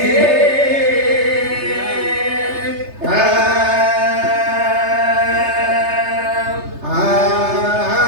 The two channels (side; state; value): left; late; 3.3 ms